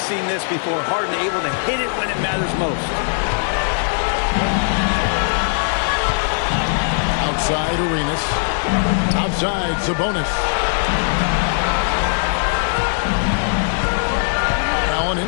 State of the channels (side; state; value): right; silent; digital silence